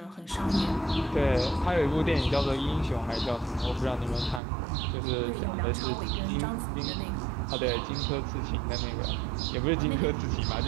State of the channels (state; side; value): drops out; left; at 4.4 s